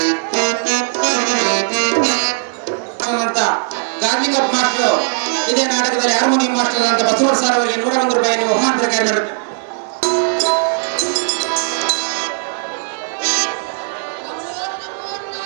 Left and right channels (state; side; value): silent; left; digital silence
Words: ಗಾರ್ಲಿಂಗಪ್ಪ ಮಾಸ್ಟರ್ ಇದೇ ನಾಟಕದಲ್ಲಿ ಹಾರ್ಮೋನಿಯಂ ಮಾಸ್ಟರ್ ಅಂತ ಬಸವರಾಜ ಸರ್ ಅವರಿಗೆ 101 ರೂಪಾಯಿಯನ್ನು ಬಹುಮಾನ ಪ್ರಕಾರ ನಡೆಯುತ್ತೆ.